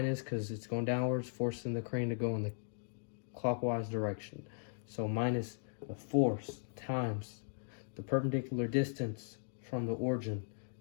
because it's going downwards, forcing the crane to go in the clockwise direction. So minus the force times the perpendicular distance from the origin,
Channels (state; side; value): silent; right; digital silence